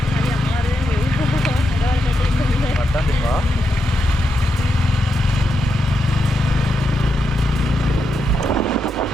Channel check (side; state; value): both; normal; correlation 0.85